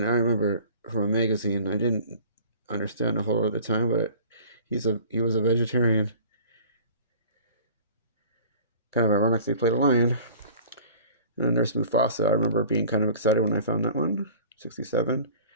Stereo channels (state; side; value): inverted; both; correlation -0.45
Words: I remember from a magazine, I didn't understand a whole lot at the time, but he was a vegetarian. Kind of ironic they played a lion. And there's Mufasa. I remember being kind of excited when I found that one. 67.